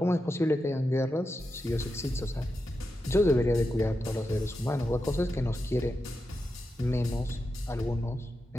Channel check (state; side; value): normal; both; correlation 0.88